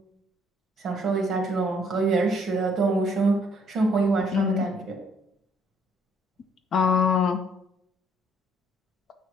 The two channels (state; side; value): normal; both; correlation 0.65